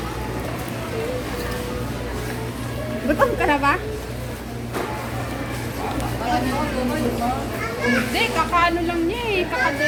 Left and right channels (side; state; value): both; identical; correlation 1.00